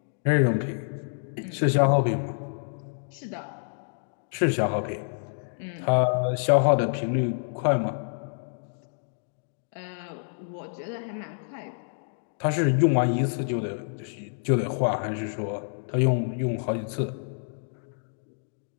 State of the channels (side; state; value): right; silent; digital silence